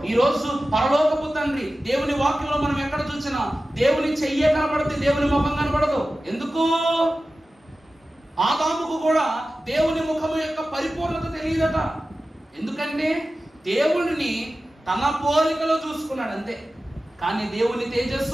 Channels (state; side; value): normal; both; correlation 0.95